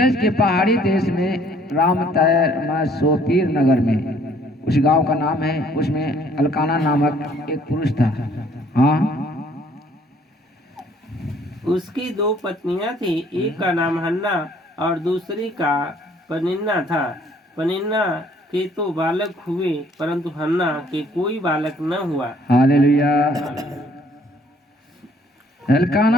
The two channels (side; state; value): both; normal; correlation 0.61